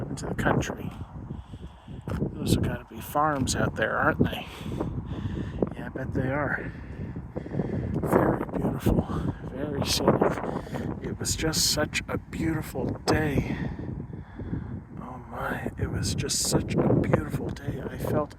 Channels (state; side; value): identical; both; correlation 1.00